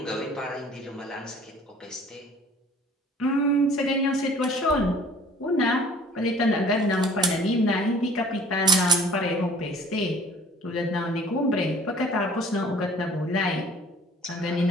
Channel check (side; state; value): both; normal; correlation 0.51